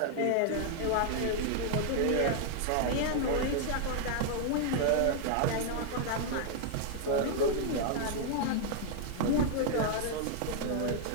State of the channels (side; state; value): both; different; correlation -0.01